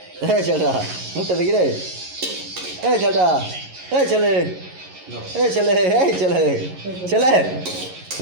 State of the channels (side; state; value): left; late; 11 ms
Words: ছেলেটা মুখটা দেখি রে। এই ছেলেটা, এই ছেলে ছেলে